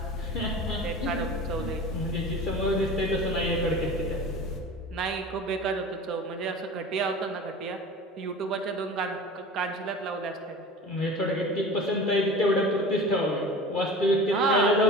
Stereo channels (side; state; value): both; normal; correlation 0.37